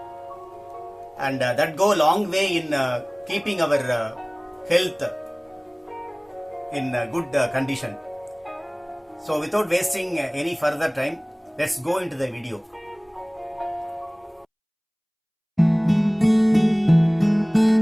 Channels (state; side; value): identical; both; correlation 1.00